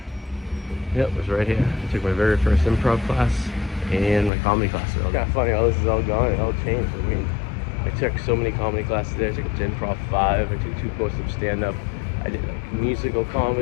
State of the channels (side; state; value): right; drops out; at 4.3 s